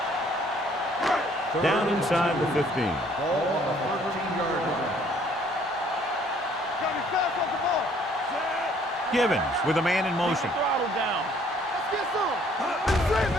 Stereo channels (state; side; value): normal; both; correlation 0.61